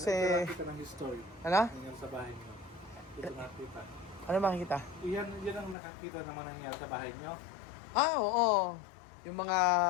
nakita ng history. Ano? Nangyari sa bahay niyo. Dito nakita. Ano makikita? Yan ang nakakita naman nangyari sa bahay niyo. Oo. Yung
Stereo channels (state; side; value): drops out; right; at 5.8 s